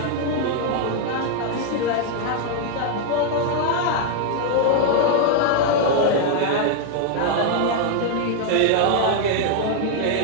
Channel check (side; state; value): both; different; correlation 0.00